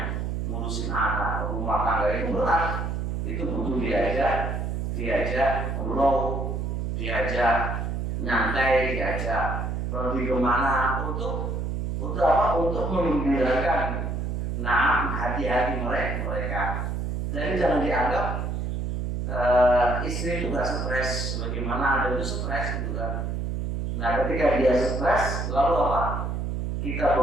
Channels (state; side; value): noise; right; hum, 2 dB below the sound